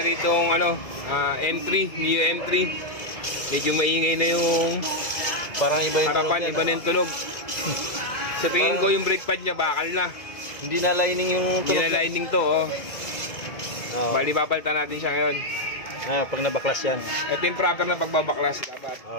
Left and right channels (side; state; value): right; late; 2.3 ms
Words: entry, new entry. Medyo maingay na yung Parang iba yung tunog harapan, niya. iba na yung tunog. Sa tingin ko yung brake pad niya bakal na. Hindi na lining yung Hindi tunog na lining to, oh. Oo. Bali papalitan natin siya ngayon. Pag nabaklas yan. Ito yung proper na pagbabaklas.